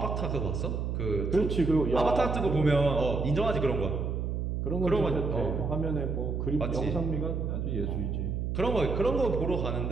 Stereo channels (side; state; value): right; noise; hum, 1 dB below the sound